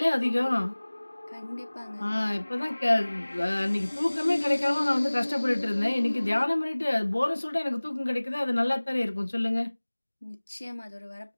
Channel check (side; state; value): both; inverted; correlation -1.00